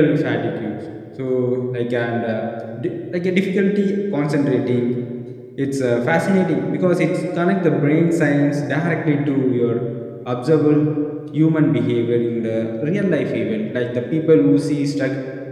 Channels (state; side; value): identical; both; correlation 1.00